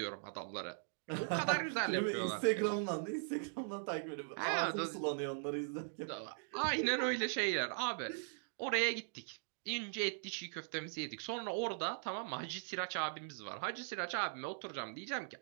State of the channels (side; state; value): left; silent; digital silence